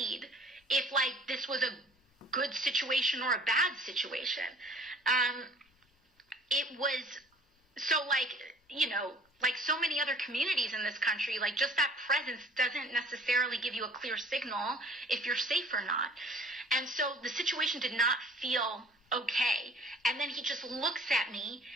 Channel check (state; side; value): normal; both; correlation 0.51